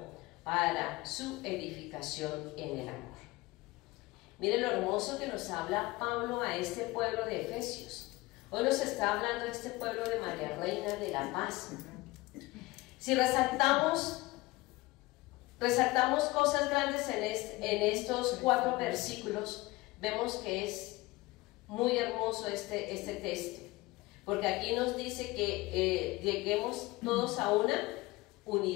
para su edificación en el amor. Miren lo hermoso que nos habla Pablo a este pueblo de Efesios. Hoy nos está hablando de este pueblo de María Reina de la Paz. Si resaltamos cosas grandes en estos 4 versículos, vemos que es muy hermoso este texto, porque aquí nos dice que lleguemos todos a una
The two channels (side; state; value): right; quieter; 20.8 dB